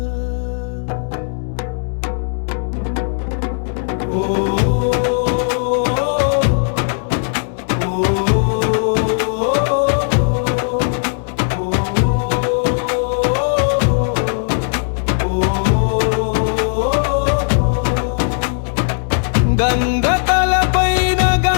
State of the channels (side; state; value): right; silent; digital silence